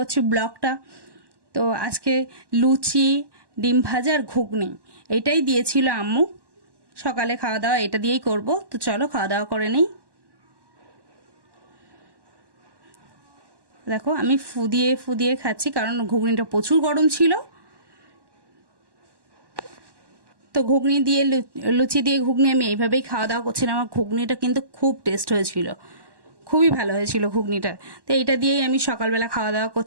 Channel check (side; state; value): left; late; 1.1 ms